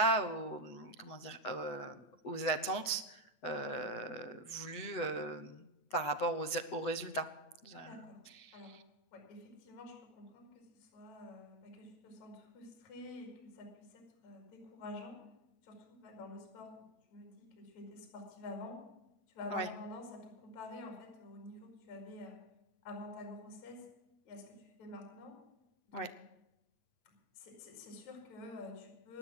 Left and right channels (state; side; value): late; right; 8.1 ms